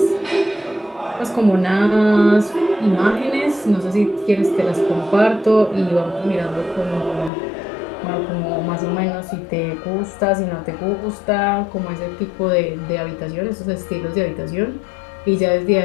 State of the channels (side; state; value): right; drops out; at 7.3 s